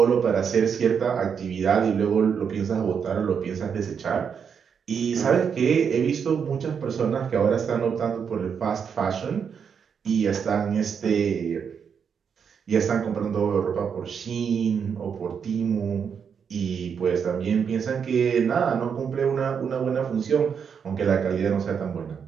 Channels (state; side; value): quieter; left; 6.9 dB